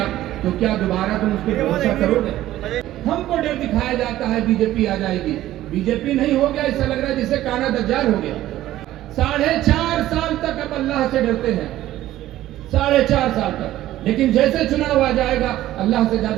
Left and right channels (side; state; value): left; quieter; 14.3 dB